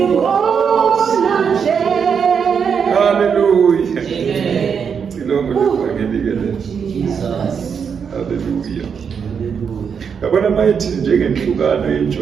yabona mayithi njengenhlukano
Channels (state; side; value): quieter; left; 6.7 dB